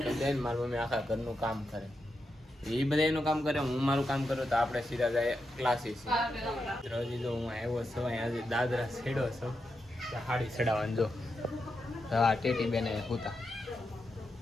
કરી દે ને મારી મમ્મી આખા ઘરનું કામ કરે. એ બધા એનું કામ કરે, હું મારું કામ કરું તો આપણે સીધા જાય ક્લાસીસ. હજી જો હું આવ્યો છું આજે દાદરા છેડો છું હાડી ચડાવવાનું. જો હા ટેટી બેને હુતા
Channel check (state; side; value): normal; both; correlation 0.86